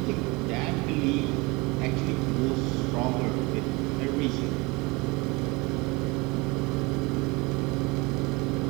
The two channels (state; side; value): quieter; left; 25.4 dB